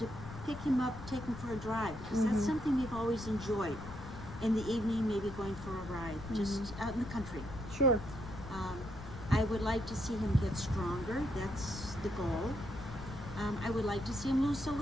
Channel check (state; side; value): noise; left; rumble, 12 dB below the sound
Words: pick him up, take him for a drive, because that's Mhm. something we've always enjoyed. In the evening, maybe going for a ride, just out in the country. Sure. I would like to see him get stronger. That's the goal. I would like to see him lose a